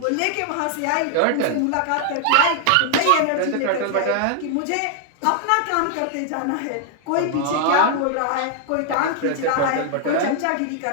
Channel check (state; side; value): different; both; correlation 0.00